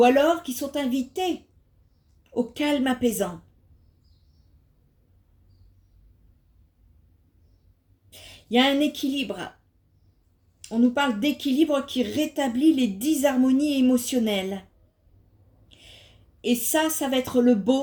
alors qui sont invités au calme apaisant. Il y a un équilibre. On nous parle d'équilibre qui rétablit les disharmonies émotionnelles. Et ça va être le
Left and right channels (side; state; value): both; identical; correlation 1.00